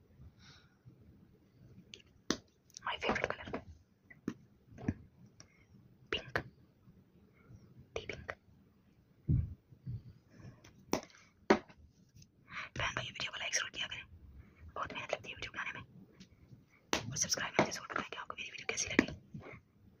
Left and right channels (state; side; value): identical; both; correlation 1.00